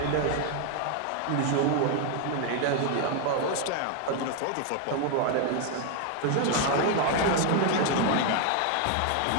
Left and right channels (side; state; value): both; different; correlation 0.01